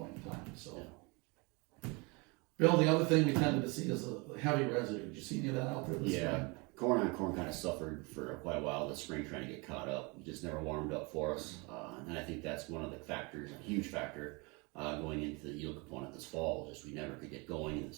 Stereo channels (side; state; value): left; quieter; 28.6 dB